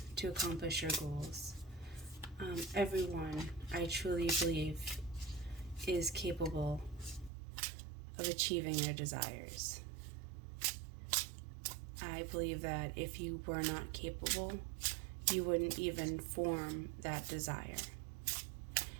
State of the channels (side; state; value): left; drops out; at 7.3 s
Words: to accomplish your goals. Everyone, I truly believe, is capable of achieving their desires. I believe that if you were not capable, you wouldn't even form that desire.